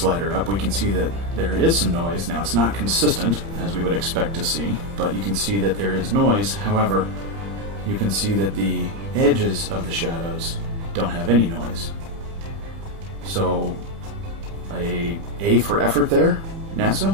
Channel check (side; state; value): left; late; 30 ms